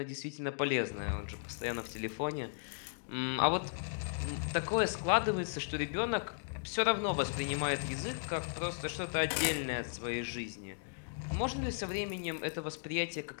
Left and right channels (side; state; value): right; silent; digital silence